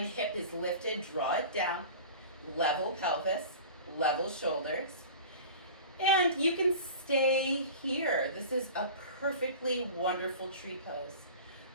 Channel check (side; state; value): both; inverted; correlation -0.38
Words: hip is lifted, draw it down. Level pelvis, level shoulders. And you can stay here. This is a perfectly wonderful tree pose.